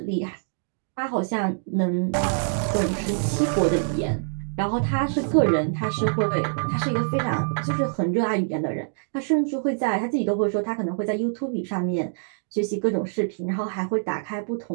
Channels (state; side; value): silent; left; digital silence